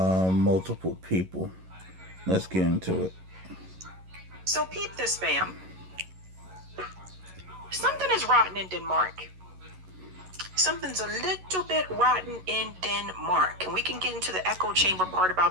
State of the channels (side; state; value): left; late; 11 ms